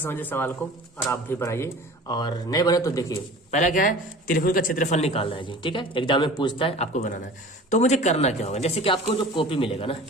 समझिए सवाल को और आप भी बनाइए। और नहीं बने तो देखिए, पहला क्या है, त्रिभुज का क्षेत्रफल निकालना है जी, ठीक है। एग्जाम में पूछता है, आपको बनाना है। तो मुझे करना क्या होगा, जैसे कि आपको जो कॉपी मिलेगा ना,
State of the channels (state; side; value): normal; both; correlation 0.41